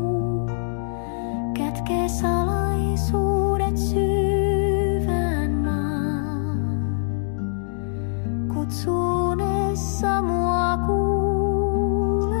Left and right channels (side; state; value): right; silent; digital silence